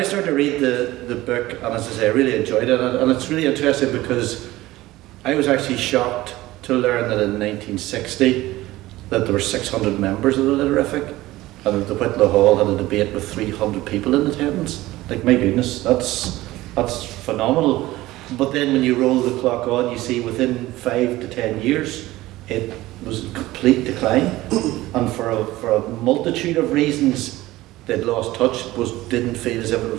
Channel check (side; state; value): left; quieter; 17.5 dB